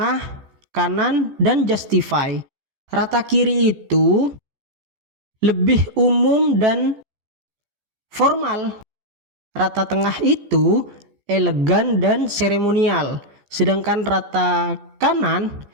kanan, dan justify. Rata kiri itu lebih umum dan formal. Rata tengah itu elegan dan seremonial. Sedangkan rata kanan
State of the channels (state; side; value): late; left; 15 ms